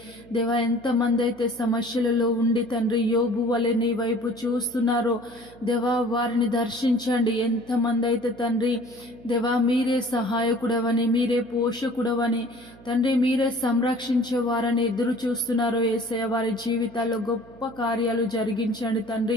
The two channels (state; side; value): noise; right; hum, 22 dB below the sound